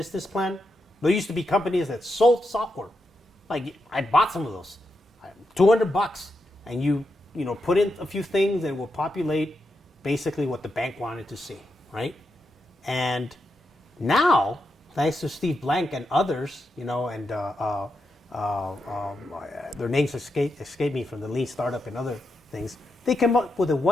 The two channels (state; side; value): normal; both; correlation 0.85